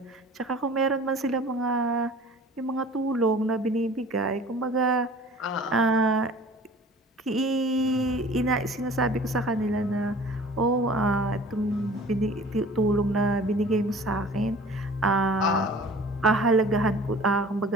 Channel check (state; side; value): normal; both; correlation 0.46